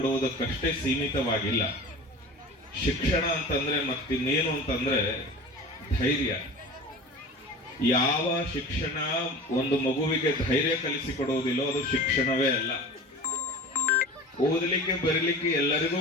ಸೀಮಿತವಾಗಿಲ್ಲ. ಶಿಕ್ಷಣ ಅಂತಂದ್ರೆ ಮತ್ತಿನ್ನೇನು ಅಂತಂದ್ರೆ ಧೈರ್ಯ. ಯಾವ ಶಿಕ್ಷಣ ಒಂದು ಮಗುವಿಗೆ ಧೈರ್ಯ ಕಲಿಸಿಕೊಡುವುದಿಲ್ಲೋ ಅದು ಶಿಕ್ಷಣವೇ ಅಲ್ಲ. ಓದಲಿಕ್ಕೆ ಬರೀಲಿಕ್ಕೆ ಎಲ್ಲರಿಗೂ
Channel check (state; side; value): normal; both; correlation 0.36